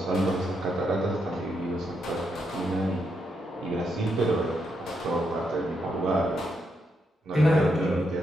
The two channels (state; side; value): normal; both; correlation 0.80